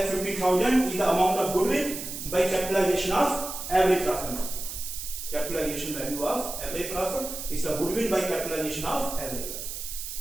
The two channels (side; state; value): right; noise; hiss, 7 dB below the sound